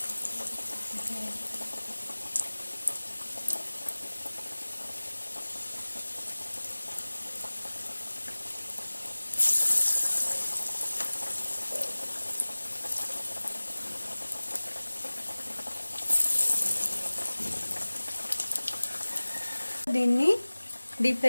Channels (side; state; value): both; inverted; correlation -1.00